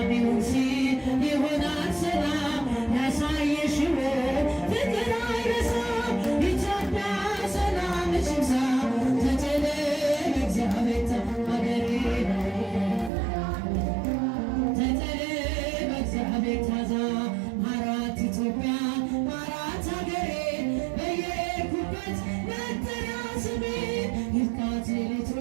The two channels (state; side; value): drops out; left; at 13.1 s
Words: ይሁን ሲል ይሆናል ሰላም ያሳየሽው ፍቅር አይረሳም። ኢትዮጵያ ሰላም ሽምሳ ተጨለ እግዚአብሔር ሀገሬ ተጨለ በእግዚአብሔር ታዛ ማራት ኢትዮጵያ ማራት ሀገሬ በየኩበት መጠሪያ ስሜ ይብቃት ሌሊቱ